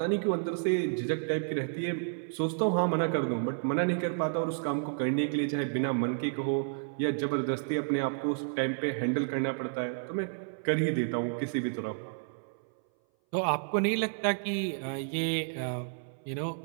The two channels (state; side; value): silent; left; 57 dB below the other